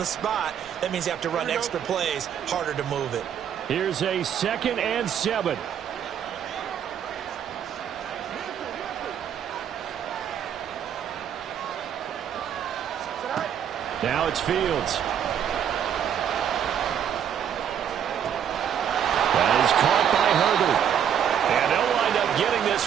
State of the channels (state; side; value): quieter; left; 8.9 dB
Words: spot. That means you have to run extra plays, harder to move it. Here's a 2nd and 7. Now it's Fields. That is caught by Herbert. And they'll wind up getting